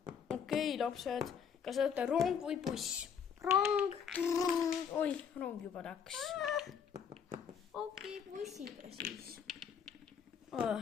lapsed. Kas olete rong või buss? Rong. Oi, rong juba läks. Okei, bussiga siis.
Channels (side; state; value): right; quieter; 7.3 dB